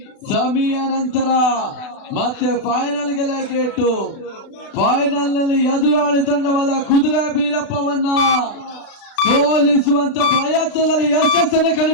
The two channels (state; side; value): late; right; 36 ms